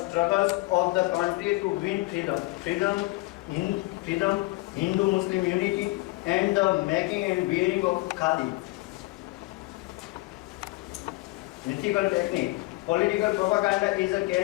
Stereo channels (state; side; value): quieter; right; 22.2 dB